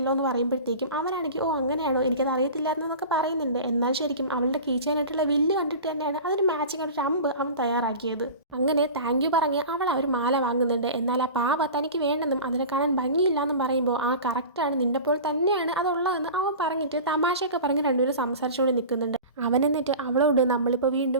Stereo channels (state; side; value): inverted; both; correlation -0.35